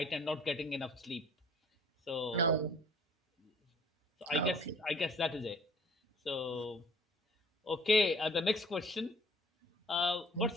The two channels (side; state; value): both; normal; correlation 0.53